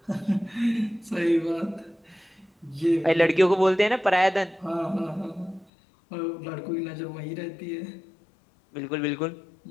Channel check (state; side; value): drops out; right; at 5.7 s